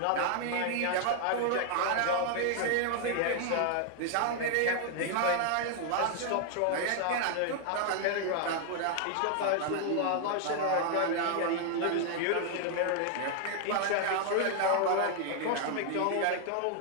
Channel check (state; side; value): different; both; correlation 0.00